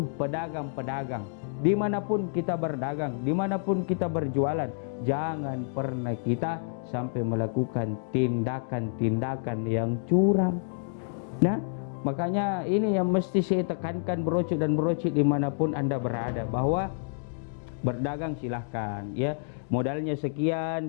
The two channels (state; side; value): silent; right; digital silence